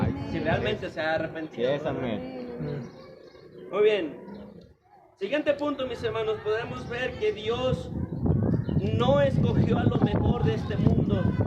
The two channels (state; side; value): identical; both; correlation 1.00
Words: Si realmente se ha Sí arrepentido. es, amén. Muy bien. Siguiente punto, mis hermanos, podemos ver que Dios no escogió a lo mejor de este mundo,